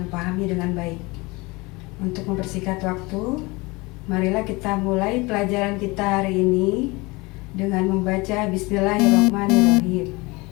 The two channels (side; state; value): right; quieter; 24.4 dB